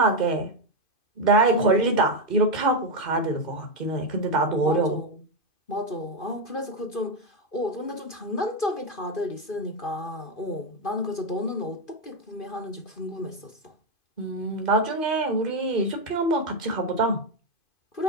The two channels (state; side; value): late; right; 2.5 ms